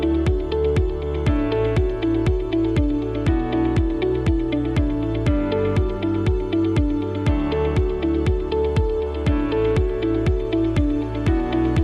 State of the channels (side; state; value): both; identical; correlation 1.00